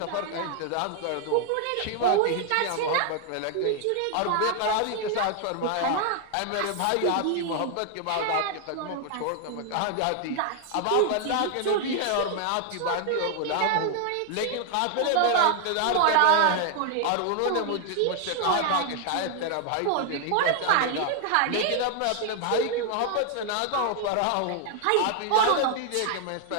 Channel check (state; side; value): different; both; correlation 0.00